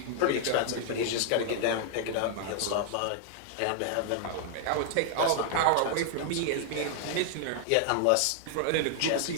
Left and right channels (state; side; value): different; both; correlation 0.00